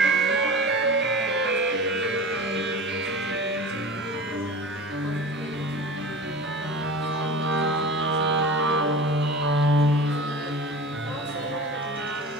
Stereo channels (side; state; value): both; normal; correlation 0.35